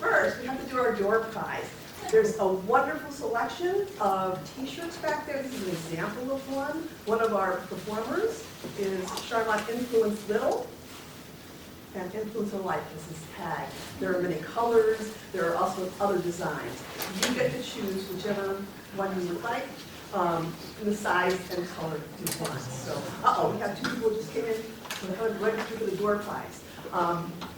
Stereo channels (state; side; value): identical; both; correlation 1.00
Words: we have to do our door prize. There's a wonderful selection of t-shirts back there. This is an example of one. One of our performers is Sharmont Influence Little and Influence of Life is his tag. There are many colors. There are also other designs. You get to choose whichever one you would like, in the size and color you want. So, we have 2 people who just came in to register for the door prize.